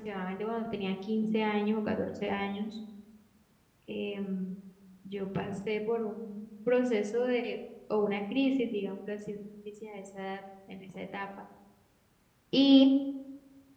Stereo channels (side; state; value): both; identical; correlation 1.00